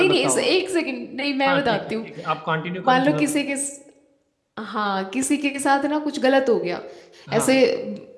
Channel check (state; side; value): identical; both; correlation 1.00